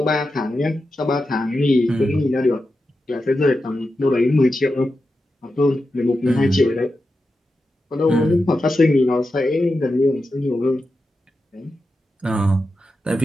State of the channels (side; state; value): both; normal; correlation 0.90